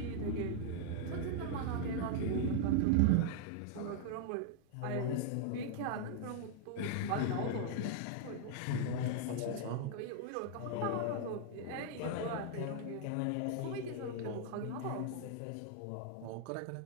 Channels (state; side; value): different; both; correlation 0.00